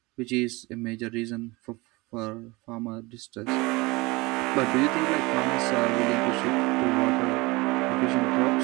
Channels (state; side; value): quieter; left; 23.6 dB